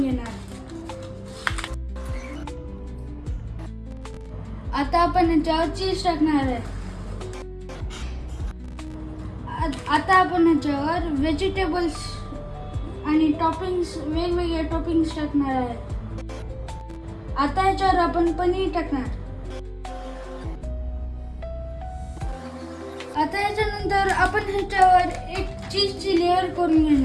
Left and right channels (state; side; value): identical; both; correlation 1.00